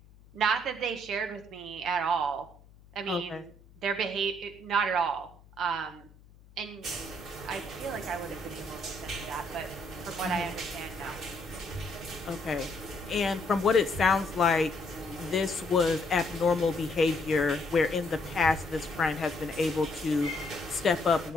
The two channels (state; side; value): noise; left; hum, 25 dB below the sound